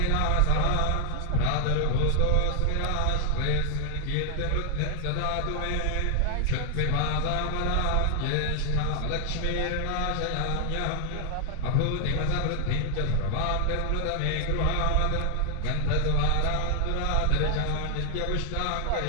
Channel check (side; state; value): both; different; correlation 0.00